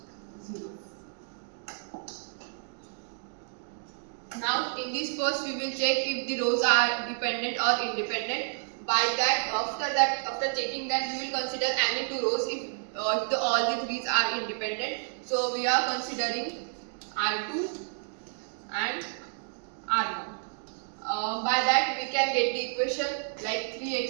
0. Now in this first, we will check if the rows are dependent or independent. By that, after checking that, we will consider any two rows if all the threes are independent. So we are considering R2 and R1. By that, we can get the equation like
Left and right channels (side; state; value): left; silent; digital silence